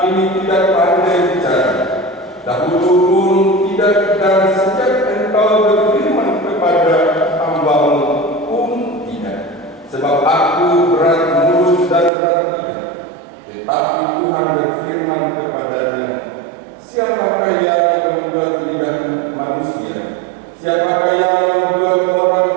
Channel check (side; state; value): left; drops out; at 12.1 s